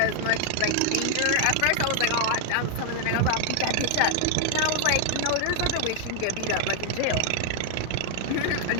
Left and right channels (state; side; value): different; both; correlation 0.00